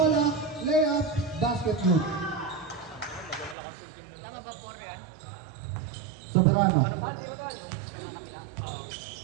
Layup, basket good. Tama ba 4 yan? Soberano.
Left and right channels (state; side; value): drops out; left; at 3.6 s